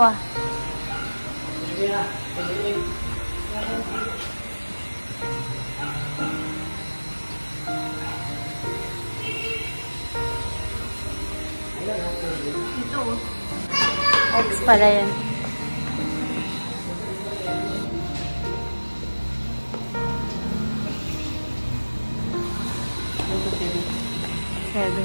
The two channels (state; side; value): inverted; both; correlation -1.00